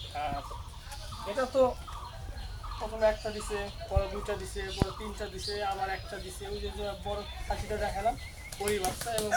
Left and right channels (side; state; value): both; identical; correlation 1.00